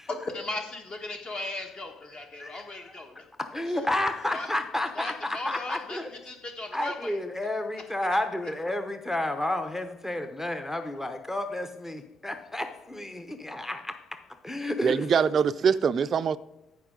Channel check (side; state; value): both; normal; correlation 0.83